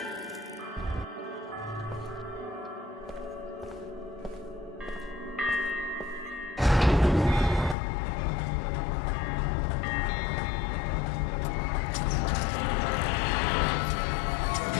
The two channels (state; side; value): drops out; right; at 7.8 s